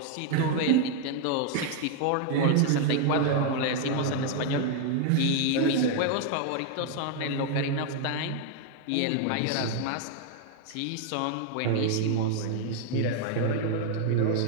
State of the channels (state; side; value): different; both; correlation 0.00